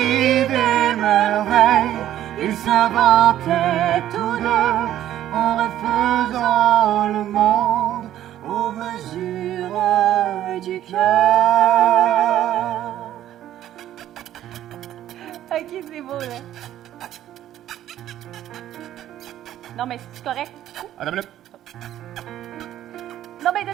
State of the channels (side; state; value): left; quieter; 12.3 dB